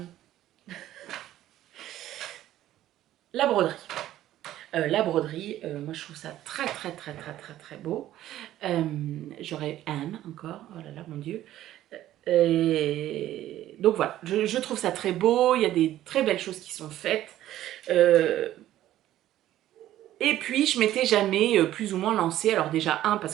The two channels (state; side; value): quieter; left; 13.4 dB